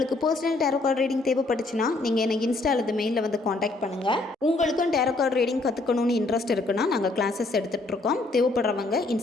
பர்சனல் டேரோ கார்டு ரீடிங் தேவைப்பட்டுச்சுன்னா நீங்கள் எனக்கு இன்ஸ்டா அல்லது மெயிலில் வந்து காண்டாக்ட் பண்ணுங்கள். உங்களுக்கும் டேரோ கார்டு ரீடிங் கற்றுக்கணும்னு இன்ட்ரெஸ்ட் இருக்குன்னா நாங்கள் கிளாஸஸ் எடுத்துகிட்ருக்கோம். தேவைப்படுறவங்க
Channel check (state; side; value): quieter; right; 3.1 dB